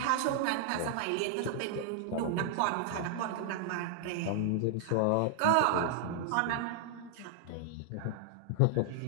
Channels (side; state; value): both; different; correlation -0.01